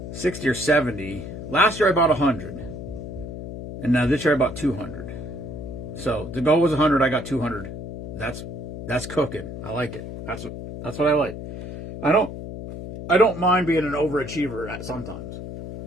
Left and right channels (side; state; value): left; noise; hum, 9 dB below the sound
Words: 60 or 70. Last year, I bought 100. And now this year, I bought 200. So the goal was 100. I got 200. That's cooking. I like it. That's what I like. I don't mind being an overachiever sometimes.